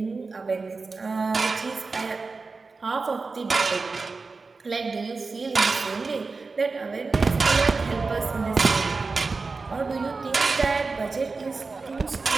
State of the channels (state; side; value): quieter; left; 4.1 dB